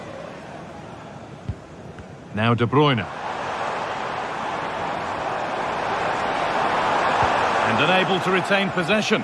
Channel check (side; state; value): both; identical; correlation 1.00